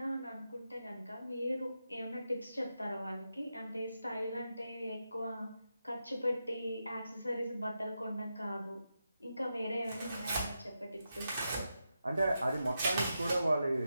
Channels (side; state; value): both; inverted; correlation -0.87